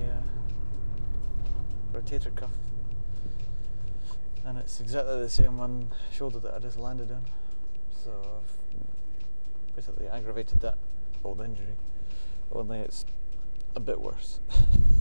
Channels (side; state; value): both; inverted; correlation -1.00